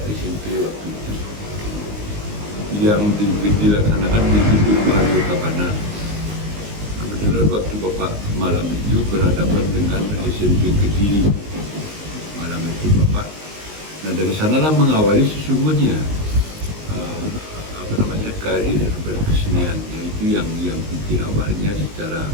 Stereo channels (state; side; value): late; left; 19 ms